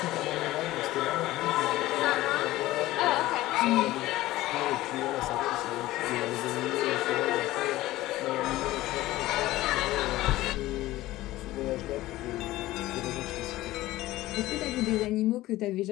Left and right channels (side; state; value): right; quieter; 16.8 dB